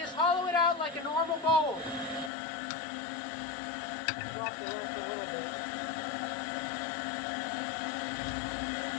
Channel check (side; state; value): right; drops out; at 2.3 s